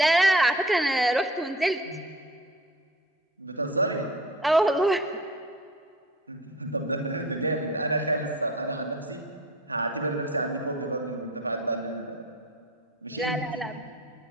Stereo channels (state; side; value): normal; both; correlation 0.42